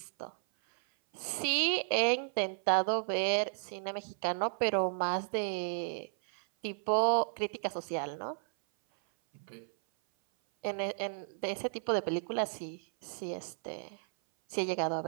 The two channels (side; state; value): left; silent; 55 dB below the other